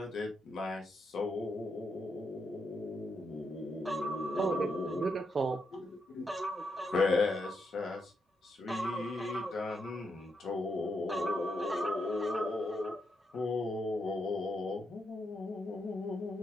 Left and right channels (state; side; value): normal; both; correlation 0.81